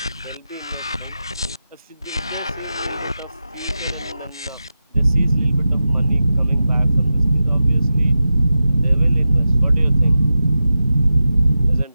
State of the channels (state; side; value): inverted; both; correlation -0.92